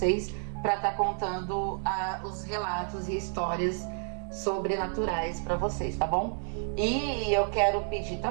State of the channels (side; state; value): left; silent; 58 dB below the other